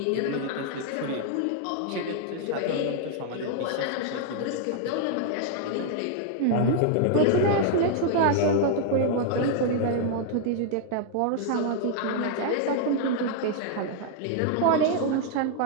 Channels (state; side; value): different; both; correlation 0.00